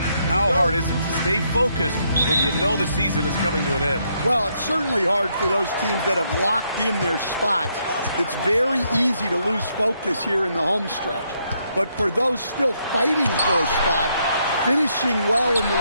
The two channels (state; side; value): inverted; both; correlation -0.75